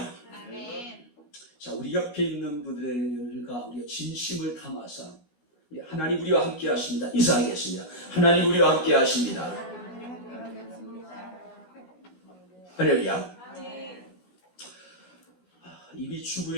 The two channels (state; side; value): late; right; 16 ms